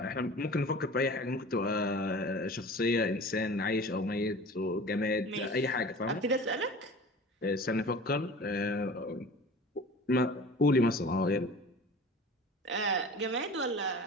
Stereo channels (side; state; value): both; normal; correlation 0.40